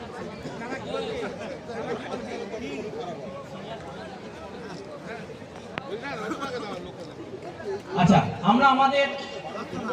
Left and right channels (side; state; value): both; identical; correlation 1.00